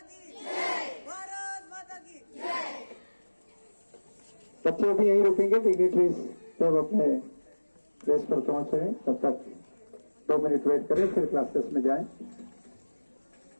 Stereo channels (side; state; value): both; inverted; correlation -1.00